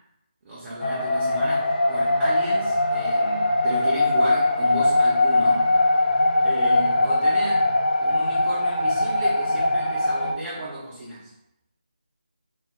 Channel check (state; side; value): inverted; both; correlation -0.89